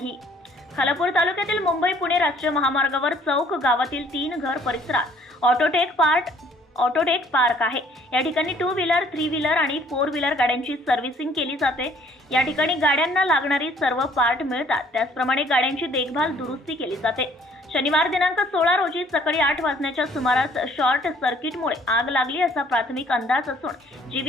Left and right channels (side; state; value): both; normal; correlation 0.59